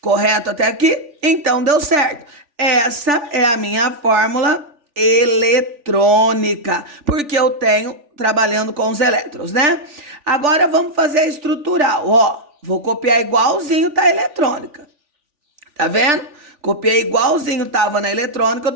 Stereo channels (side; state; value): left; late; 3.4 ms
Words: Correto até aqui? Então deu certo. Essa é a minha fórmula eletrônica, porque eu tenho trabalhando com os elétrons, né? Agora vamos fazer a estrutural, ó. Vou copiar igualzinho tá a eletrônica. Tá vendo? Copiei igualzinho tava na eletrônica, eu